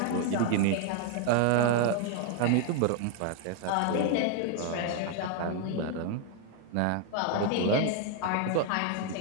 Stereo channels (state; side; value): different; both; correlation 0.00